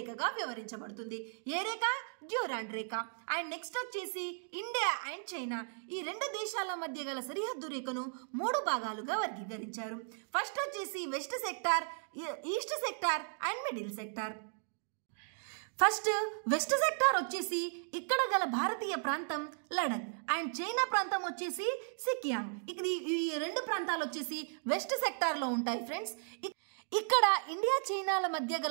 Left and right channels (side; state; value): left; silent; digital silence